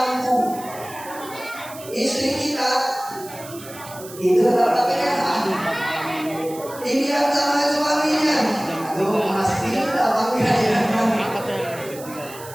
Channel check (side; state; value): right; noise; hiss, 16 dB below the sound